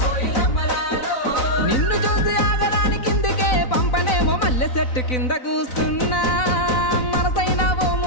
నిన్ను చూసి ఆగడానికి కిందికే పంపనేమో మల్లె చెట్టు కింద కూస్తున్నా మనసైన ఓ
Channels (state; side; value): late; right; 4.0 ms